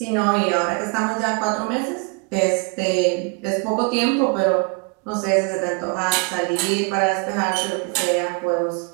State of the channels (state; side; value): quieter; left; 34.2 dB